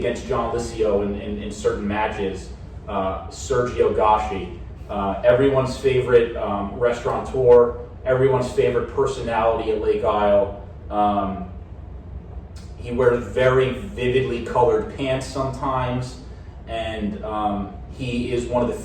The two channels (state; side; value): identical; both; correlation 1.00